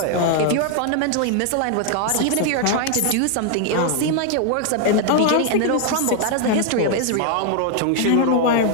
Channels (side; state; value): both; different; correlation 0.00